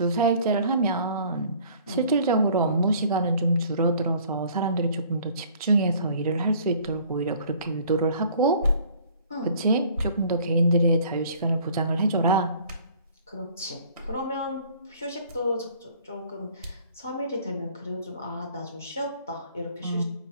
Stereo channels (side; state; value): both; inverted; correlation -0.54